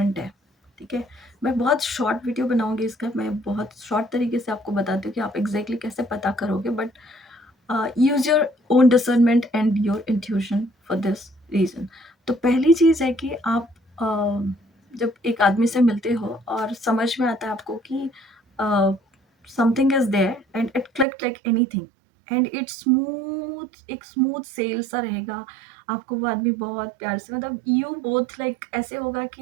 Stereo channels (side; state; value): left; drops out; at 21.1 s